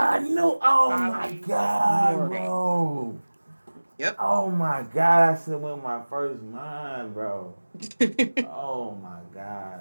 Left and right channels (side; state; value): both; inverted; correlation -1.00